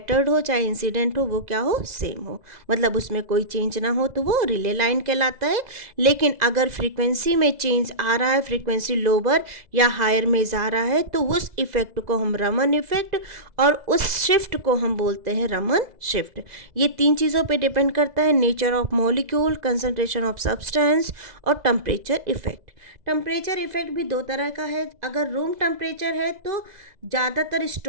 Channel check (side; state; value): left; late; 2.0 ms